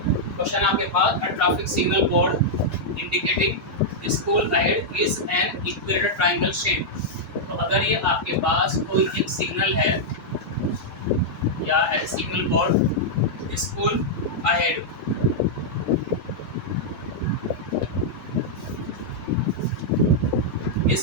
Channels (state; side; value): normal; both; correlation -0.06